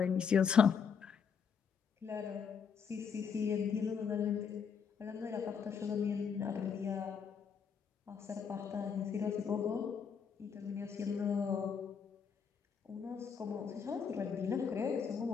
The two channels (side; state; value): right; quieter; 6.6 dB